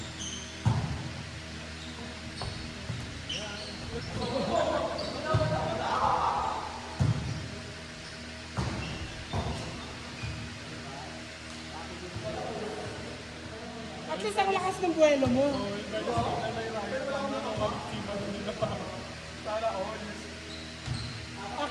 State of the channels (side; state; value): both; identical; correlation 1.00